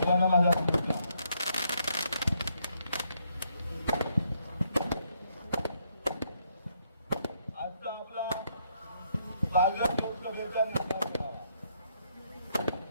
माझा नमस्कार. आजचा आपला पालघर लोकसभेचा निकाल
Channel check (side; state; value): both; inverted; correlation -0.73